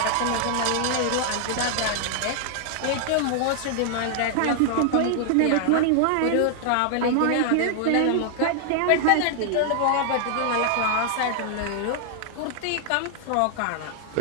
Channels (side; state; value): both; different; correlation 0.00